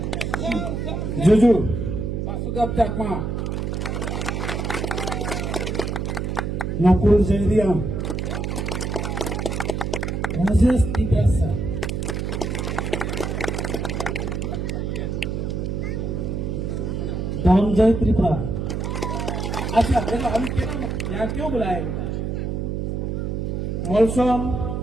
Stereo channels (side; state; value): right; noise; hum, 2 dB below the sound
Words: जुजू वासुदेव चाकमा नकुल जैरिया राजेश तिब्यासा धनंजय त्रिपुरा। अच्छा देखो हम यहाँ क्यों बुलाए इनको? मौसम